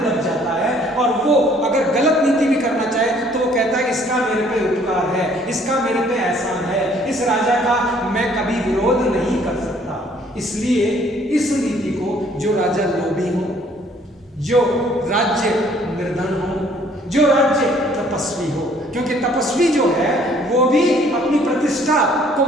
जाता है, और वो अगर गलत नीति भी करना चाहे तो वो कहता है इसका मेरे पे उपकार है, इसका मेरे पे एहसान है, इस राजा का मैं कभी विरोध नहीं कर सकता। इसलिए इस नीति को जो राजा लोभी हो, जो राज्य निर्धन हो, जो राज्य तपस्वी हो, क्योंकि तपस्वी जो है वो भी अपनी प्रतिष्ठा को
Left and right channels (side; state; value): both; normal; correlation 0.60